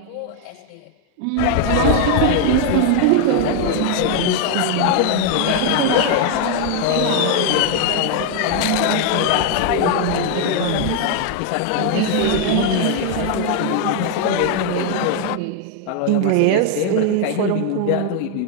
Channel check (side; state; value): both; different; correlation 0.00